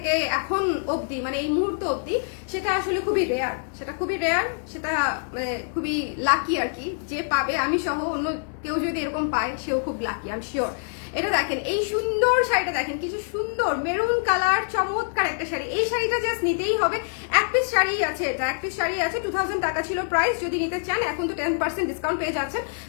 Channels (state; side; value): silent; right; 62 dB below the other